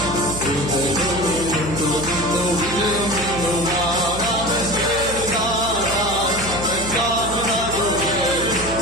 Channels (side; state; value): right; noise; hum, 10 dB below the sound